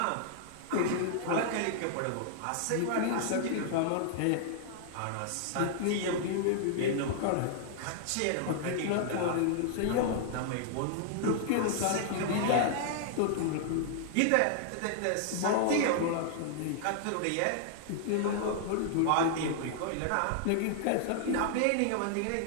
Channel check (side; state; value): both; different; correlation -0.01